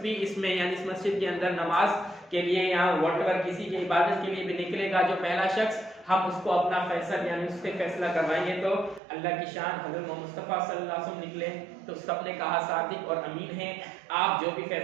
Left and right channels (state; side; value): drops out; left; at 9.0 s